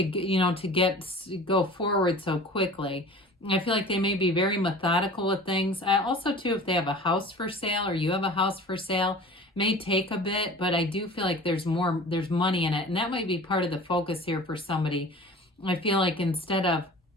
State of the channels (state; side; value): normal; both; correlation 0.41